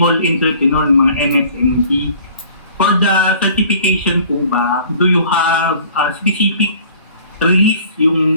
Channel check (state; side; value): inverted; both; correlation -0.51